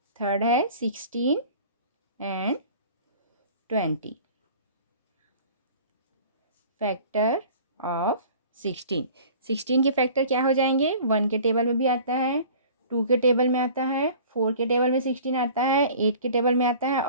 थर्ड है 16 एंड 20। Factor of 16। 16 के फैक्टर क्या हो जाएंगे? 1 के टेबल में भी आता है, 2 के टेबल में आता है, 4 के टेबल में 16 आता है, 8 के टेबल में आता है,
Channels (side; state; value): both; inverted; correlation -0.46